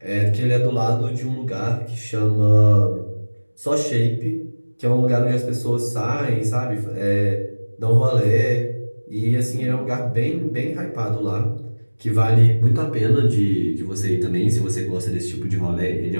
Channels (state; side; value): inverted; both; correlation -1.00